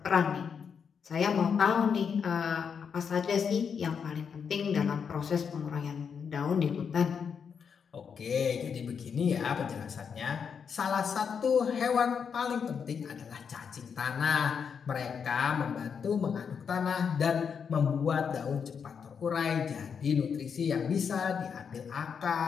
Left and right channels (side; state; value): right; quieter; 6.7 dB